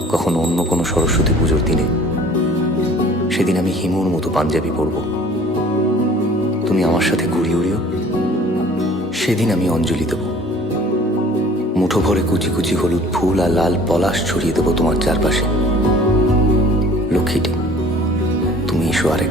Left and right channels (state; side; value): normal; both; correlation 0.51